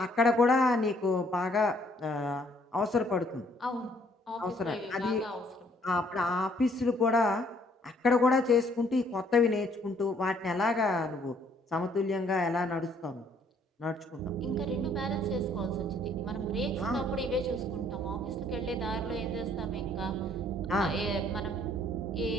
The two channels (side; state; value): both; normal; correlation 0.64